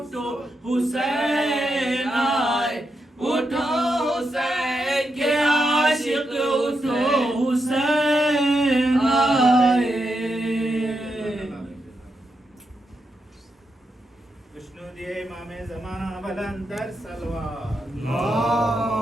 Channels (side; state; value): both; normal; correlation 0.84